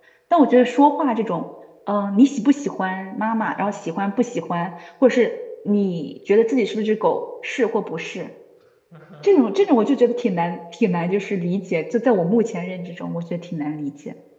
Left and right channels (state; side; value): identical; both; correlation 1.00